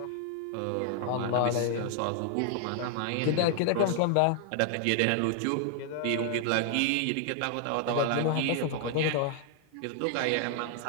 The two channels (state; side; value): different; both; correlation 0.00